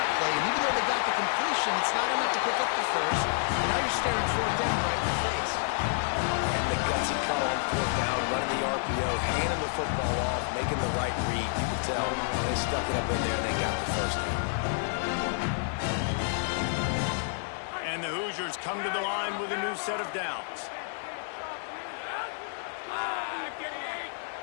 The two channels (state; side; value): silent; right; 58 dB below the other